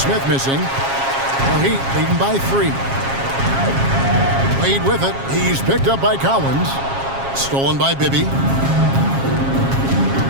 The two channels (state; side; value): late; left; 7.4 ms